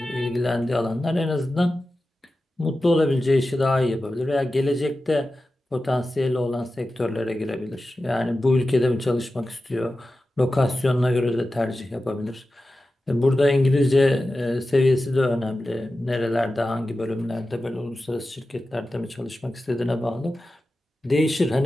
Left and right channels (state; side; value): normal; both; correlation 0.93